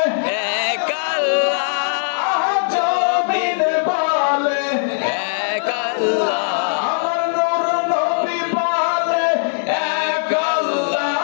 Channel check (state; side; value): silent; right; digital silence